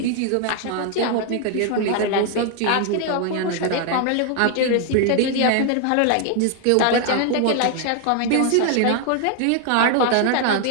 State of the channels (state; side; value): different; both; correlation 0.00